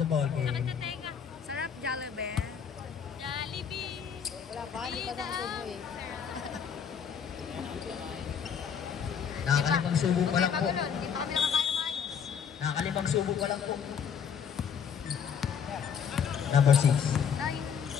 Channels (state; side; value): quieter; right; 7.4 dB